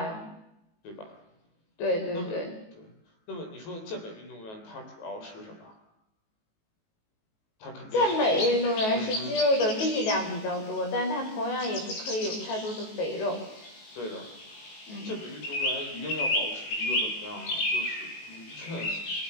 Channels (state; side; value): late; right; 19 ms